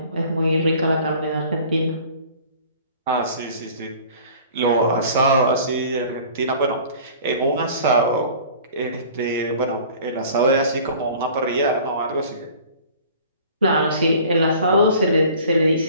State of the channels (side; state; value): both; inverted; correlation -0.47